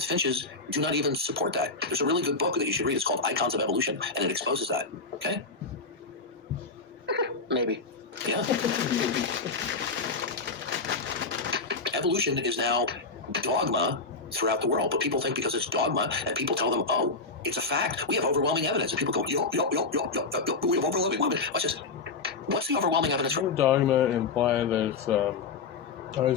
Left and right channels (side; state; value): right; quieter; 4.2 dB